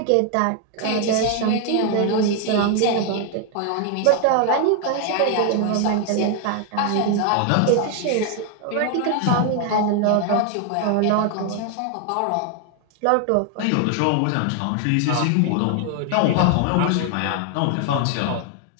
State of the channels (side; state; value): both; different; correlation 0.00